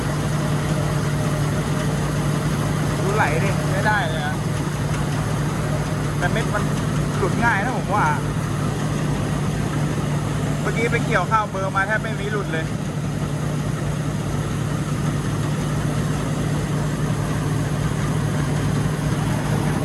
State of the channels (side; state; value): both; identical; correlation 1.00